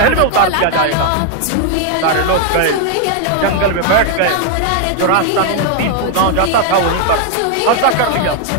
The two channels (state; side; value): different; both; correlation 0.00